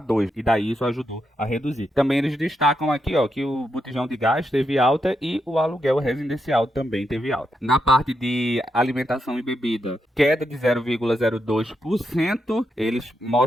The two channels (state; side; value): normal; both; correlation 0.83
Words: 2, e daí isso ajudou a reduzir. Também eles destacam aqui, ó, que o botijão de gás teve alta e o aluguel residencial também teve alta. Na parte de alimentação e bebida, queda de 0,02%. Eles